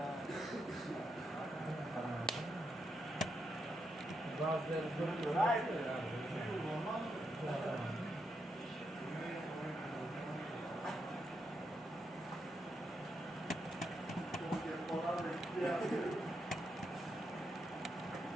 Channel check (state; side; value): normal; both; correlation 0.82